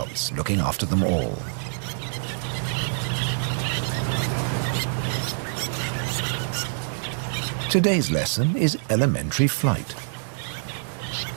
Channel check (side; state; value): left; silent; digital silence